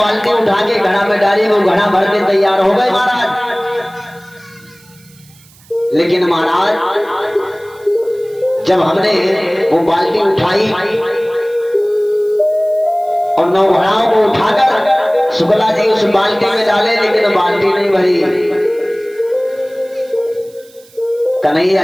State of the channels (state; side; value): noise; right; hiss, 27 dB below the sound